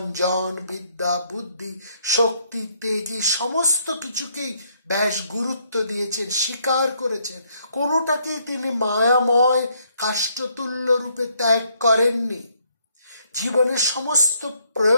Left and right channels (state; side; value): inverted; both; correlation -0.70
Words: জন বিদ্যা বুদ্ধি শক্তি তেজি, সমস্ত কিছুকেই ব্যাস গুরুত্ব দিয়েছেন, স্বীকার করেছেন। কোনোটাকেই তিনি মায়াময় কাষ্ঠতুল্য রূপে ত্যাগ করেননি। জীবনের সমস্ত